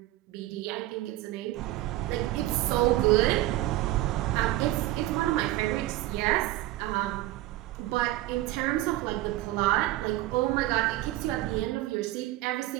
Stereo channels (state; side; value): quieter; left; 16.2 dB